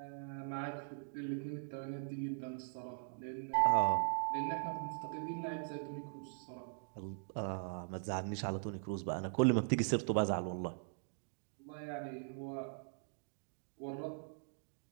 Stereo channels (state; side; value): silent; left; digital silence